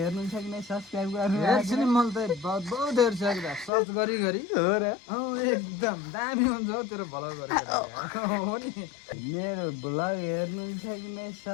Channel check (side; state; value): right; drops out; at 3.7 s